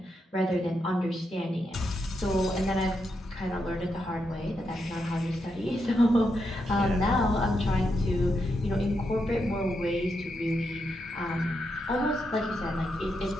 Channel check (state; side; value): normal; both; correlation 0.83